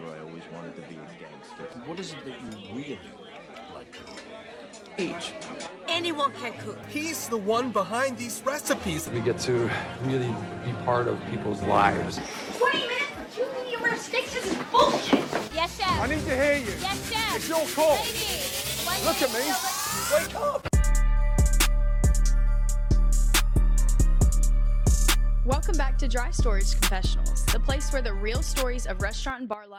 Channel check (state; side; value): identical; both; correlation 1.00